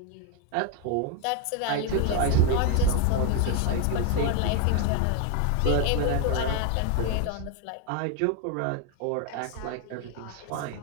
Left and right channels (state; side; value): different; both; correlation 0.01